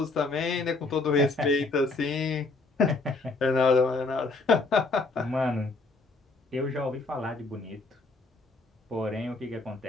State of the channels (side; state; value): right; quieter; 3.5 dB